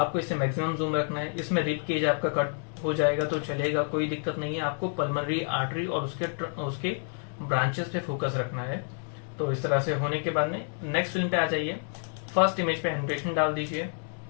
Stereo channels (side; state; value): right; silent; 59 dB below the other